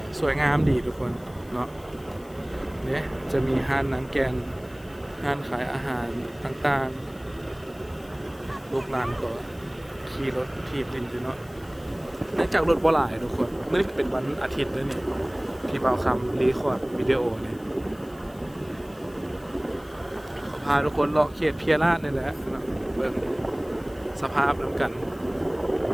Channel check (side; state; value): left; noise; hiss, 26 dB below the sound